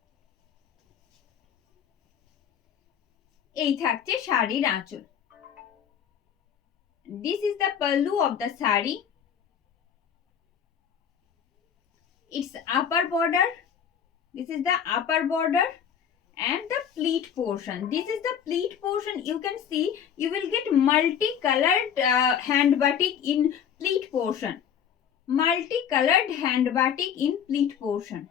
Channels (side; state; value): right; quieter; 8.4 dB